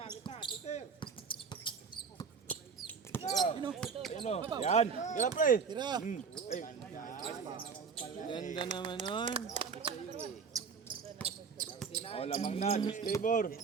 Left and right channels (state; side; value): quieter; left; 5.8 dB